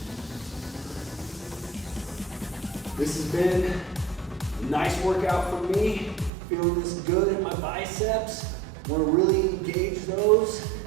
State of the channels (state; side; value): drops out; left; at 6.3 s